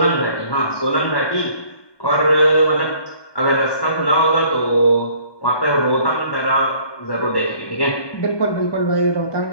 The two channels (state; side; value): late; right; 1.2 ms